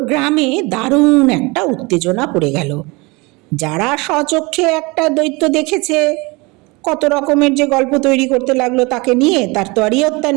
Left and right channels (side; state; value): left; quieter; 25.7 dB